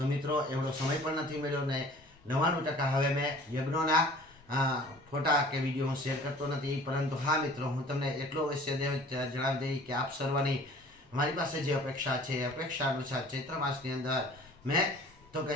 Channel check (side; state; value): both; normal; correlation 0.48